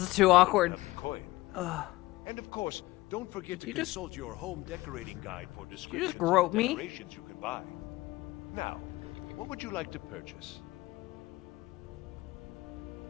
too awkward. Coin. And of course, don't forget to you just- consult your home decorating guide for you descriptions just grope of the me? decorations you can buy. Now, what would you like to purchase?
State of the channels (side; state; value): right; quieter; 19.0 dB